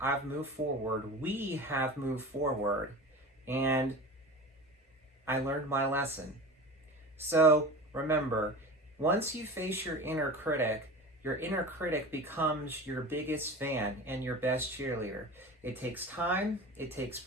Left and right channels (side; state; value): both; normal; correlation 0.33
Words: I've moved forward. We have moved forward. And I learned my lesson. So remember, once you face your inner critic becomes your biggest fan and your best cheerleader. It takes time, it takes